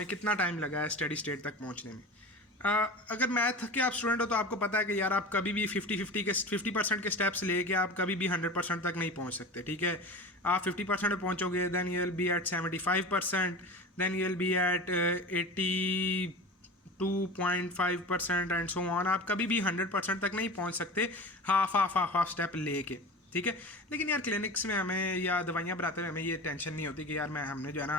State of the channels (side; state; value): both; normal; correlation 0.32